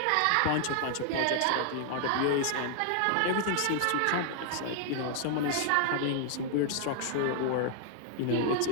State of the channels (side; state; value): both; different; correlation 0.00